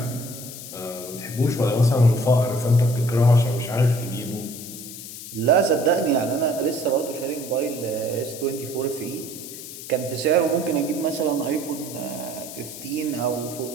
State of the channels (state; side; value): noise; left; hiss, 12 dB below the sound